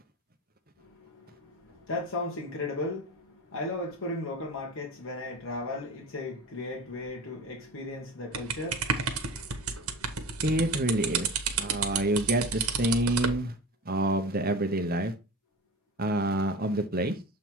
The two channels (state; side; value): normal; both; correlation 0.32